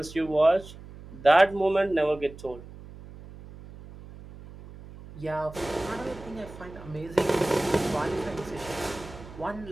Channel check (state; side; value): noise; right; hum, 16 dB below the sound